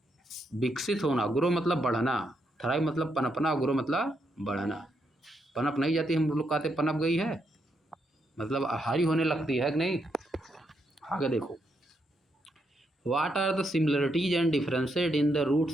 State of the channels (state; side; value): normal; both; correlation 0.79